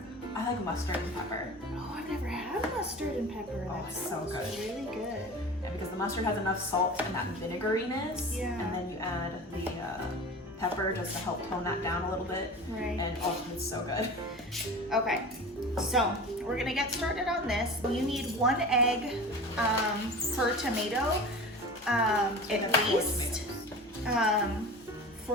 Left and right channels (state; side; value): normal; both; correlation 0.35